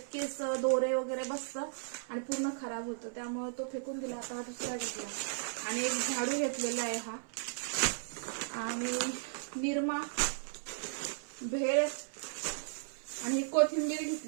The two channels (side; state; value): left; silent; 54 dB below the other